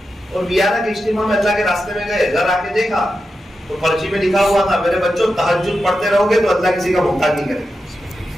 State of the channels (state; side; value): normal; both; correlation 0.89